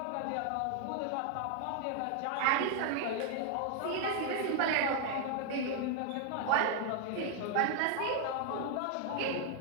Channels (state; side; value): different; both; correlation 0.00